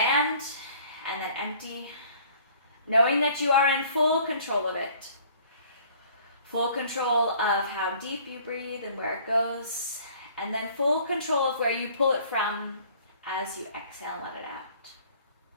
and then empty, knowing that you are in full control of it. Full control of how deep you breathe and where it goes, and then full control of where you pull it from as you exhale and let it out.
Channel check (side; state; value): both; inverted; correlation -0.54